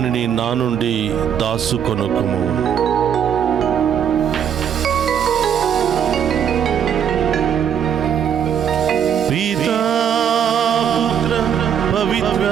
నా నుండి దాసుకొనుకుము. పితా పుత్ర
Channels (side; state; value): left; quieter; 8.7 dB